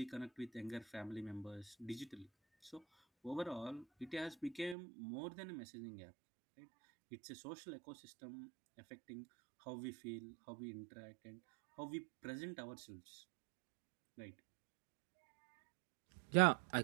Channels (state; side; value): drops out; left; at 4.8 s